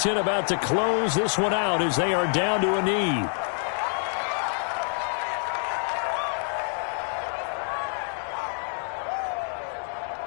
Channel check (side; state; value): right; silent; 57 dB below the other